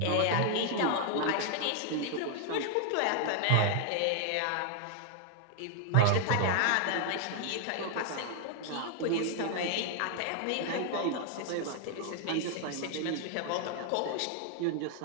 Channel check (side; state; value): both; different; correlation 0.00